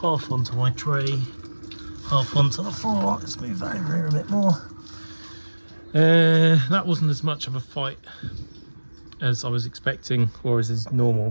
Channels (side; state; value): both; inverted; correlation -1.00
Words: half onto my tray, half onto the floor. Let's move that over here a bit more. That wasn't as much of a fight as I was expecting, or as is normal,